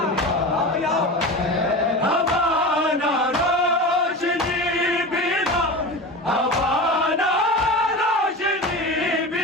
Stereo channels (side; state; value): both; normal; correlation 0.29